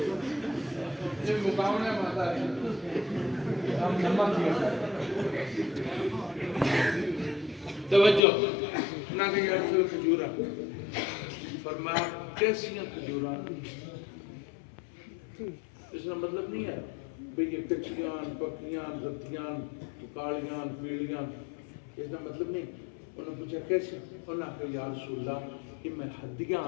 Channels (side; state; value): right; drops out; at 8.2 s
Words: یہ مقامنے ماتا ہے ہم نمک کیا توجہ نہ کہ یہ رسول کھجورہ فرمایا کیسیاں کھجورہ اس کا مطلب نہیں ہے بھئی یہ کچھیاں پکیاں رتیاں کالیاں پیلیاں اس کا مطلب نہیں انہوں نے پوچھا کیسے انہوں نے کہا یا رسول اللہ کہ میں ہدیاں